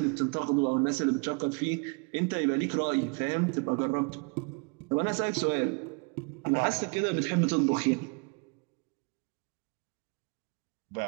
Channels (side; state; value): left; quieter; 32.5 dB